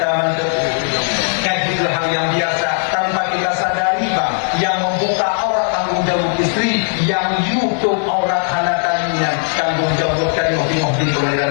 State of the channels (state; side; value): silent; right; 60 dB below the other